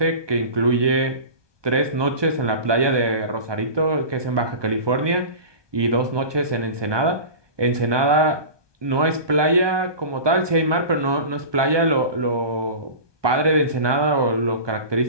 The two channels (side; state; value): left; late; 1.2 ms